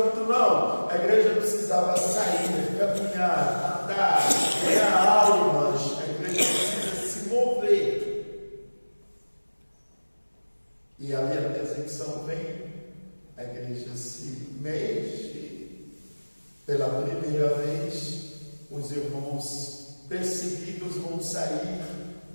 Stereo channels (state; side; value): inverted; both; correlation -1.00